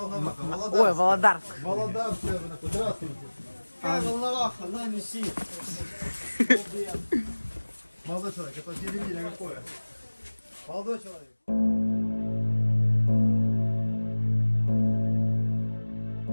Володарск. Володарск, здравствуйте. Какая Волноваха, на неси. Молодой человек, это телевидение какое? Молодой человек.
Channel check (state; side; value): inverted; both; correlation -1.00